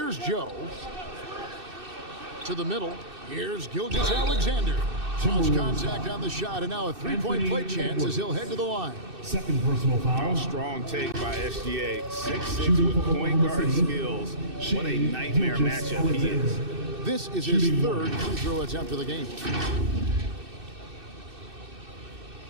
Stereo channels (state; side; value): late; left; 2.6 ms